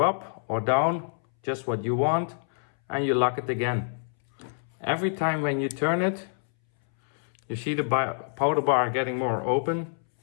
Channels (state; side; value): silent; right; 60 dB below the other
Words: up or down, just what you want, and you lock it again. Every time when you turn it, you see the powder bar getting more open